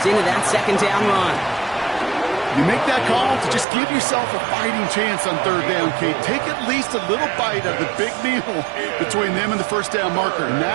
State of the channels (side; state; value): left; drops out; at 3.7 s